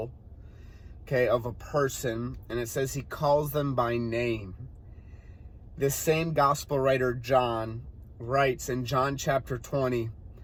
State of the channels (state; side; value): identical; both; correlation 1.00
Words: okay, of a person, and it says he calls them by name. This same gospel writer, John, writes in John chapter 20